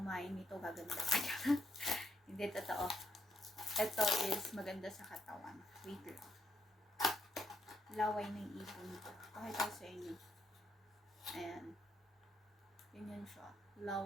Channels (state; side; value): normal; both; correlation 0.77